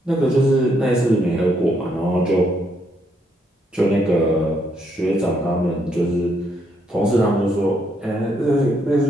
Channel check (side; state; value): both; normal; correlation 0.74